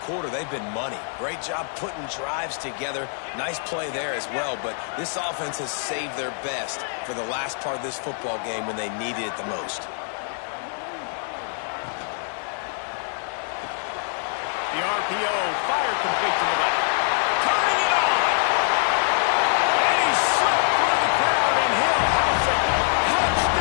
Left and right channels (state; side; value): silent; right; 57 dB below the other